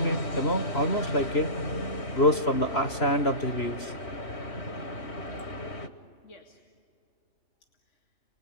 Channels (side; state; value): right; late; 3.0 ms